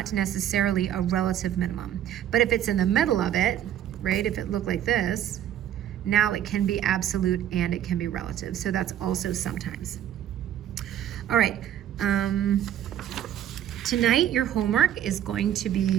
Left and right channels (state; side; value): quieter; left; 10.9 dB